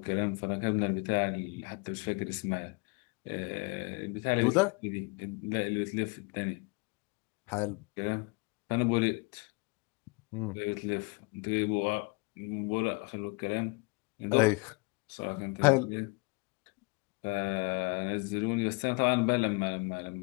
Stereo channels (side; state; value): right; quieter; 29.5 dB